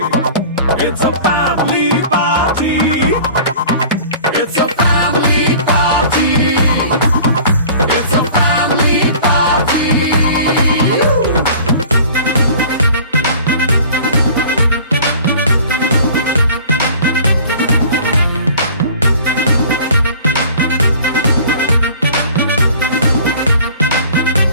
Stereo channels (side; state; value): both; inverted; correlation -0.46